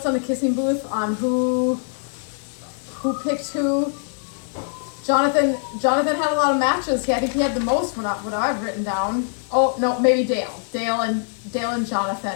on the kissing booth on who picked who. Jonathan had a lot of matches. I think he had the most what I've written down. Oh, no, maybe Dale. Dale and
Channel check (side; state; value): right; silent; 64 dB below the other